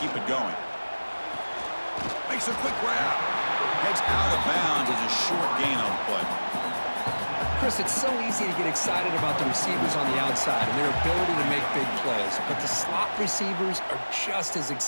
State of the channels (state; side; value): inverted; both; correlation -1.00